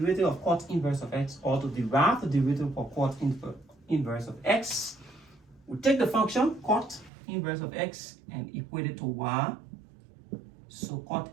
of cot inverse of x, or to derive the derivative of cot inverse of x, we take the function cot inverse of x and equate it to y. So cot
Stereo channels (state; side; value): drops out; left; at 7.1 s